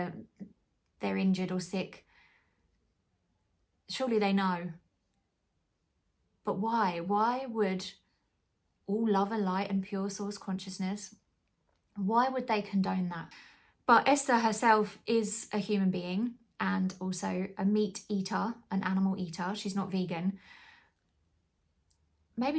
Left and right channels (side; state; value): both; identical; correlation 1.00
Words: injured or sick. Surely they know. But why? Why would all love and light and pure source consciousness, why would they condone that? But Esther herself is a human being and also a meat eater, an animal eater. She's not vegan. Maybe